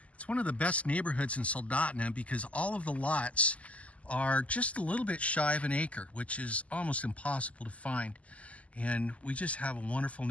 It's one of the best neighborhoods in Soldotna because all of the lots are just a little bit shy of an acre, which is almost impossible to find. And we just have a wonderful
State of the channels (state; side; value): late; right; 0.067 ms